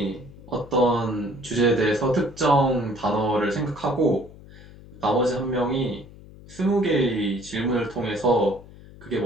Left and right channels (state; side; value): noise; left; hum, 19 dB below the sound